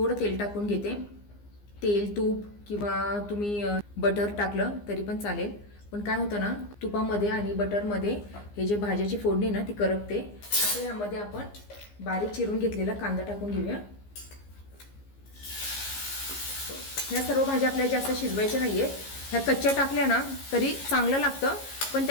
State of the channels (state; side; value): late; right; 15 ms